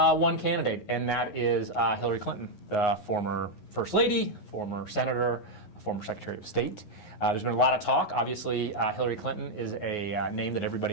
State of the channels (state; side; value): late; right; 11 ms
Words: candidate, and that is Hillary Clinton, the former First Lady, former Senator, former Secretary of State. There's been a lot of talk. Obviously, Hillary Clinton is a name that